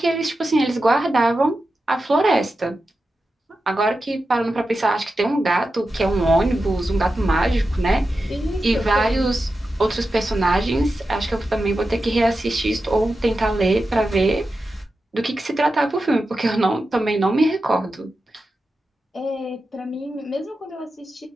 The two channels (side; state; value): both; normal; correlation 0.91